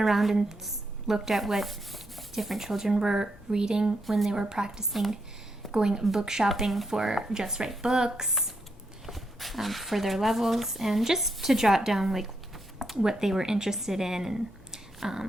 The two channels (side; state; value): both; normal; correlation 0.80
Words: and looked at what different children were reading when they were practicing going book shopping for Just Right books for their levels, and just to jot down like what they were interested in.